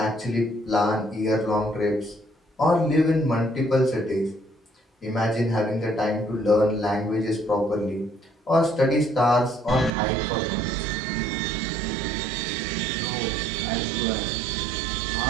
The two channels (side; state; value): left; drops out; at 9.9 s